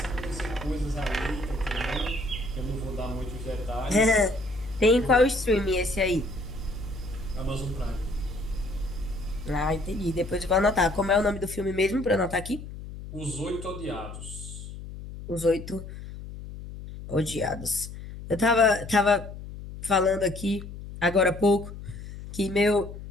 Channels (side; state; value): left; noise; hum, 11 dB below the sound